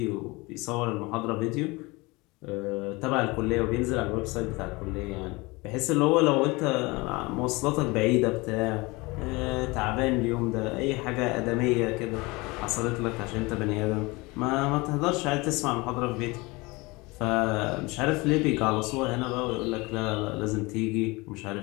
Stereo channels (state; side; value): quieter; right; 24.3 dB